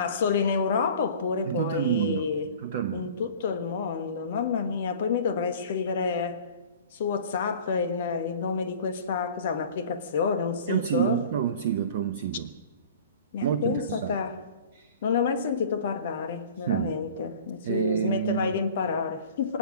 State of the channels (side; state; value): both; inverted; correlation -0.43